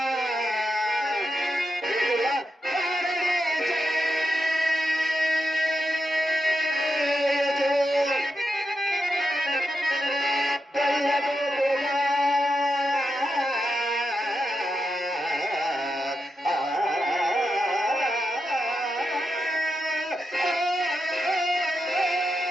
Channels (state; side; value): normal; both; correlation 0.86